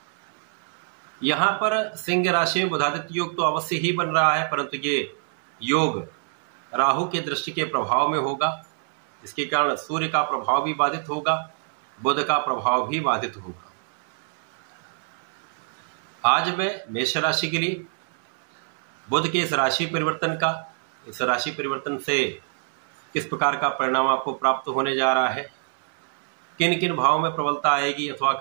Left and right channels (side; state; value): left; silent; digital silence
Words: यहाँ पर सिंह राशि में बुधादित्य योग तो अवश्य ही बन रहा है, परंतु ये योग राहु के दृष्टि के प्रभाव में होगा। इसके कारण सूर्य का प्रभाव भी बाधित होगा, बुध का प्रभाव भी बाधित होगा। आज मैं मेष राशि के लिए बुध के इस राशि परिवर्तन से किस प्रकार का परिणाम आपको प्राप्त होने जा रहा है, किन किन भावों में प्रबलता आएगी अथवा